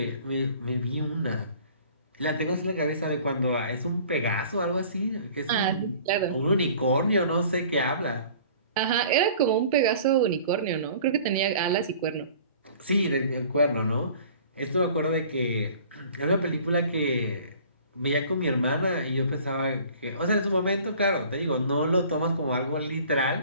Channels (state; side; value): inverted; both; correlation -0.49